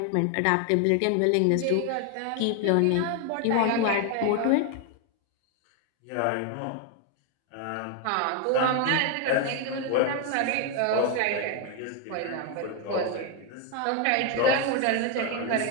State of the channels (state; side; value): different; both; correlation 0.01